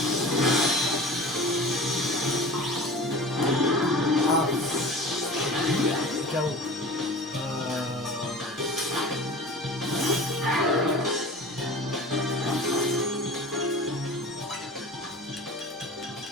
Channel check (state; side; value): normal; both; correlation 0.37